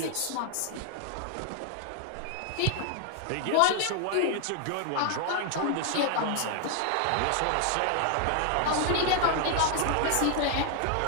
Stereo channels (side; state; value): both; different; correlation 0.00